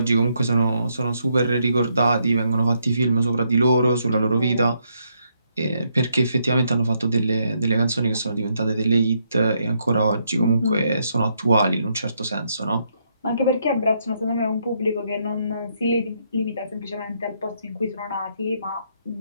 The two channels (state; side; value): inverted; both; correlation -0.76